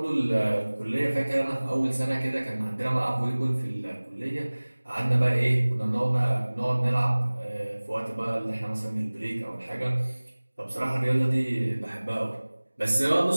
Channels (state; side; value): inverted; both; correlation -1.00